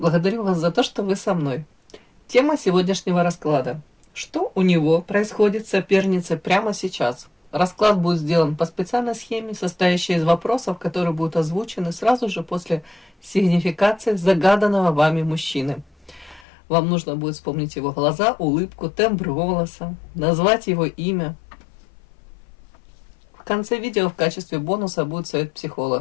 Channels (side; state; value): right; drops out; at 16.4 s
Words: вас за то, что вы со мной. Тема сегодняшнего расклада. Что у него происходит с соперницей прямо сейчас? Расклад будет сделан по специальной схеме, состоящей из вопросов, которые будут озвучены сразу же после сигнификации загаданного вами мужчины. Вам нужно будет вспомнить его глаза, улыбку, тембр голоса, назвать его имя. В конце видео в качестве бонуса будет совет